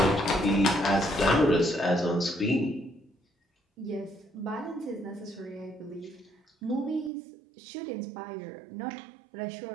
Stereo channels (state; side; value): drops out; left; at 7.1 s